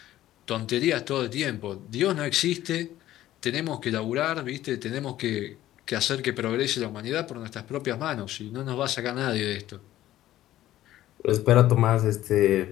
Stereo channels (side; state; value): right; quieter; 14.0 dB